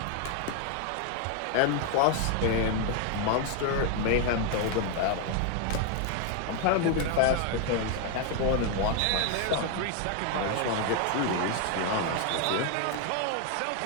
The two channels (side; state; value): both; different; correlation 0.01